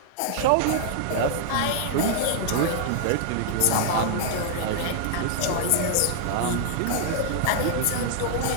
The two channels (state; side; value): different; both; correlation -0.01